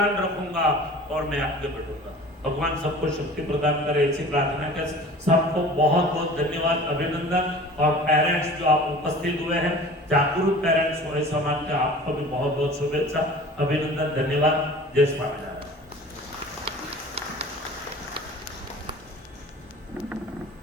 रखूंगा और मैं आगे बढ़ूंगा। भगवान सबको शक्ति प्रदान करे, ऐसी प्रार्थना के सबको बहुत बहुत धन्यवाद, अभिनंदन। और पेरेंट्स जो आप उपस्थित हुए हैं, जागरूक पेरेंट्स हुए समाज के, आपको भी बहुत बहुत शुभेच्छा, अभिनंदन, धन्यवाद। जय स्वामीनारायण।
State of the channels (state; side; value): normal; both; correlation 0.42